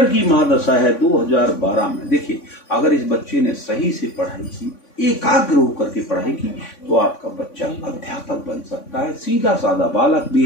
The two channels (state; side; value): late; right; 3.5 ms